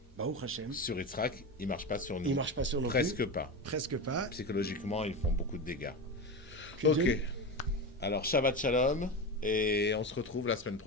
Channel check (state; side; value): normal; both; correlation 0.21